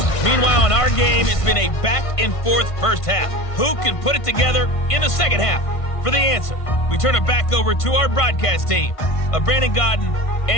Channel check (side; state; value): right; late; 1.5 ms